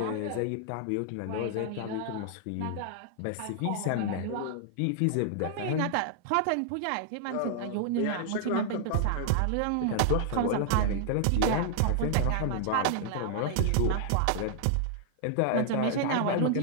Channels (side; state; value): both; different; correlation -0.01